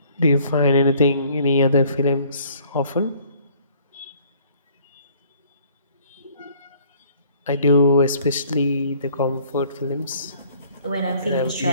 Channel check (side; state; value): both; inverted; correlation -0.58